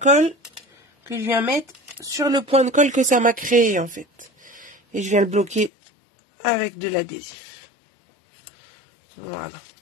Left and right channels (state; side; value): drops out; right; at 5.7 s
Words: que je viens mettre sur le point de colle que ça m'a créé en fait. Et je viens le bloquer avec de l'adhésif. Voilà.